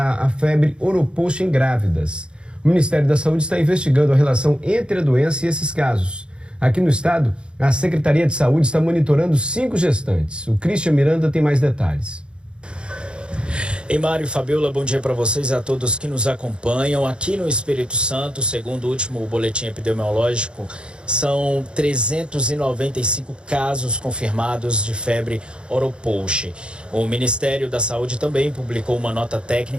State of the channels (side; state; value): left; late; 0.054 ms